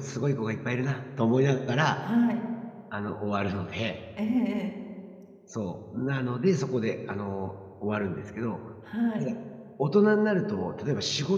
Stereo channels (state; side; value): identical; both; correlation 1.00